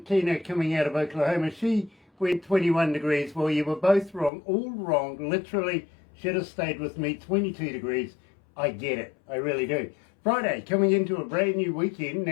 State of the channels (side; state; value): right; drops out; at 4.3 s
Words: Tina coming out of Oklahoma. She went 21 degrees. Well, you were both wrong, all wrong. Literally should have stayed with me, 22 degrees. I get it, I really do. Friday, coming into a brand new weekend.